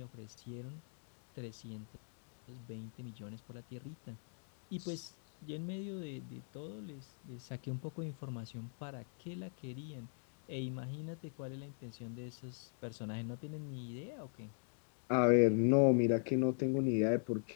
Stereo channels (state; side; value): silent; right; digital silence